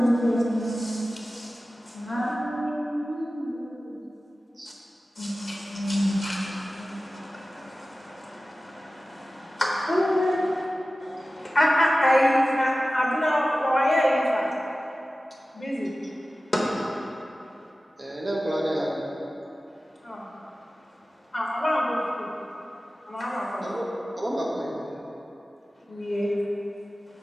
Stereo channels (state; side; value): normal; both; correlation 0.96